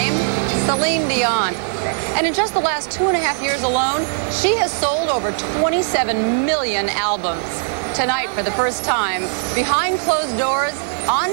Celine Dion. And in just the last 2.5 years alone, she has sold over 27 million albums. Tonight, for the first time, behind closed doors,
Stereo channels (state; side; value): silent; left; 66 dB below the other